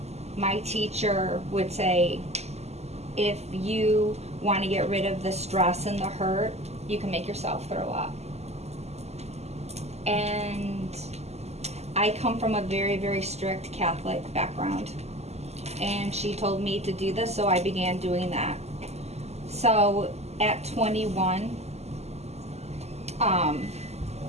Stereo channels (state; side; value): late; left; 0.31 ms